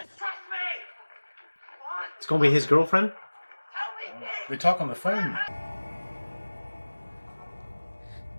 trust me! It's gonna be his girlfriend? They talk on the phone.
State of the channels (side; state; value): both; inverted; correlation -1.00